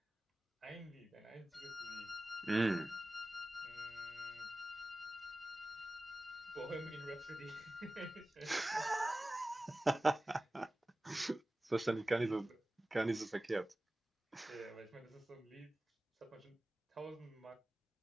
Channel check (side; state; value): both; normal; correlation 0.96